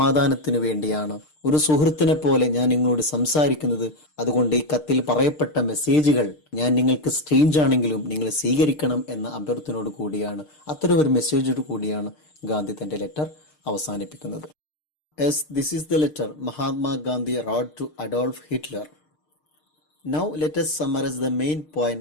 വേണ്ടിയാണ് ഒരു സുഹൃത്തിനെ പോലെ ഞാൻ നിങ്ങളോട് സംസാരിക്കുന്നത്. അതുകൊണ്ട് ഈ കത്തിൽ പറയപ്പെട്ട മെസ്സേജുകൾ ഞാൻ നിങ്ങൾക്ക് സ്ട്രേഞ്ച് ആണെങ്കിലും നിങ്ങൾ സ്വീകരിക്കണം എന്ന അഭ്യർത്ഥനയോട് കൂടിയാണ്, അത്തരം ഒരു മെസ്സേജോട് കൂടിയാണ് ഗാന്ധി തന്റെ ലെറ്റർ അവസാനിപ്പിക്കുന്നത്. Yes, this is the letter Mahatma Gandhi wrote to Adolf Hitler. Now let us summarize the main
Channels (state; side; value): late; right; 6.6 ms